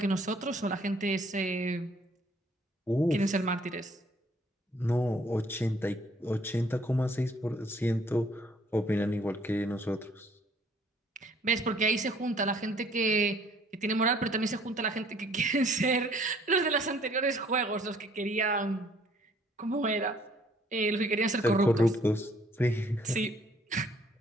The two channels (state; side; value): normal; both; correlation 0.60